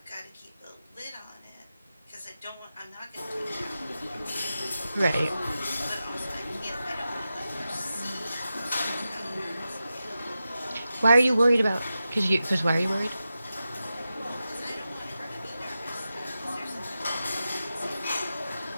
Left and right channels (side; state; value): both; inverted; correlation -0.92